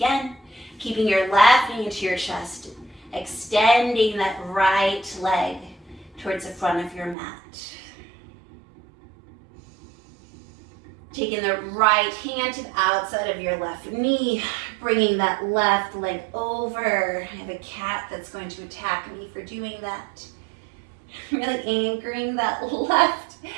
Keeping your left knee into your chest. Extending that right leg towards the front of your mat. Taking the right hand to the outside of your left knee, bringing that left leg over. I have a cat that's going to attack me for doing that. Really anchoring that left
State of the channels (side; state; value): left; drops out; at 7.2 s